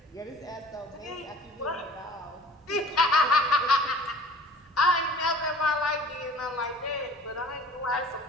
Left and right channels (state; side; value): normal; both; correlation 0.47